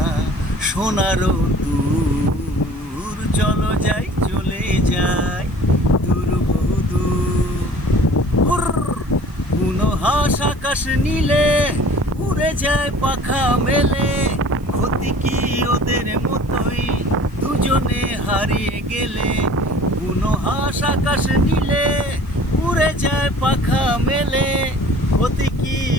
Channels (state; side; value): noise; right; hiss, 29 dB below the sound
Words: সোনারও দূর চলো যাই চলে যাই দূর কোনো হাঁস আকাশ নীলে উড়ে যায় পাখা মেলে ক্ষতি কি ওদের মতোই দুজনে হারিয়ে গেলে কোনো হাঁস আকাশ নীলে উড়ে যায় পাখা মেলে ক্ষতি কি